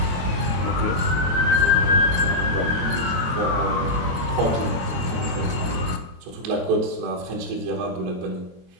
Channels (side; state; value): left; late; 22 ms